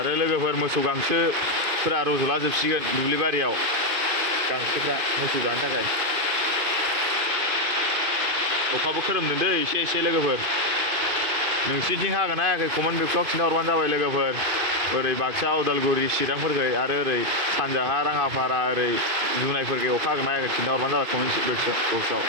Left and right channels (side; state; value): left; late; 2.5 ms